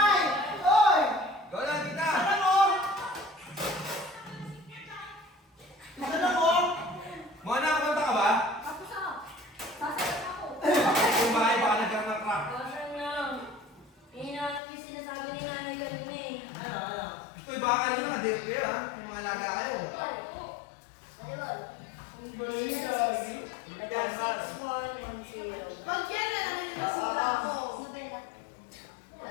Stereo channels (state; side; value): drops out; right; at 14.6 s